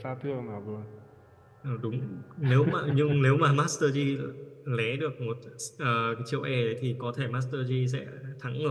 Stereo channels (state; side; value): identical; both; correlation 1.00